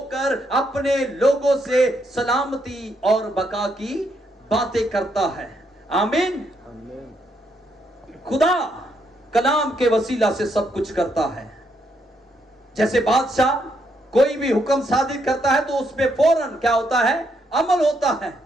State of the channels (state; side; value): normal; both; correlation 0.76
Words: अपने लोगों से सलामती और बका की बातें करता है। आमीन। खुदा कलाम के वसीला से सब कुछ करता है। जैसे बादशाह कोई भी हुक्म सादिर करता है तो उसमें फौरन क्या होता है, अमल होता है।